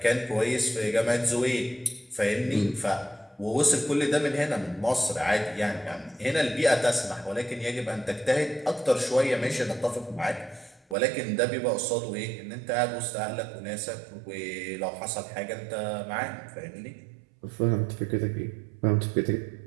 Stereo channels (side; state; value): left; drops out; at 11.0 s